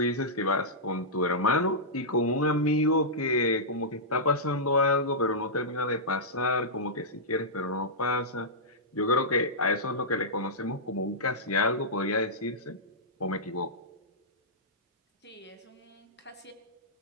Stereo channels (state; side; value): normal; both; correlation -0.13